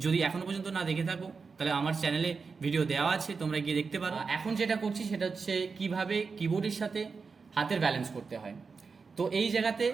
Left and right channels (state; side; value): quieter; left; 4.9 dB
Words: যদি এখনও পর্যন্ত না দেখে থাকো তাহলে আমার চ্যানেলে ভিডিও দেওয়া আছে, তোমরা গিয়ে দেখতে পারো। এখন যেটা করছি সেটা হচ্ছে কিভাবে কিবোর্ডের সাথে হাতের ব্যালেন্স করতে হয়। তো এই জায়গাতে